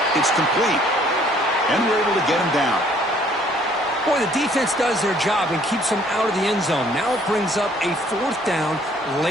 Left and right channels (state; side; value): normal; both; correlation 0.60